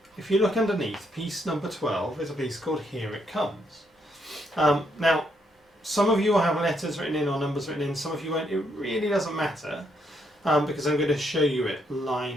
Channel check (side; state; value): both; normal; correlation 0.75